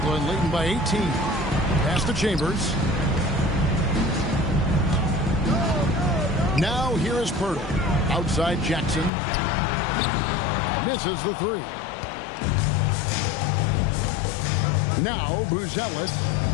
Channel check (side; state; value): right; drops out; at 9.1 s